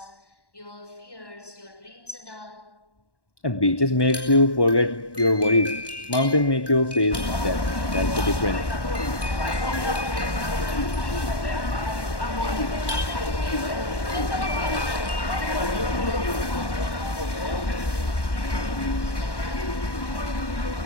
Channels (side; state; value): right; late; 1.1 ms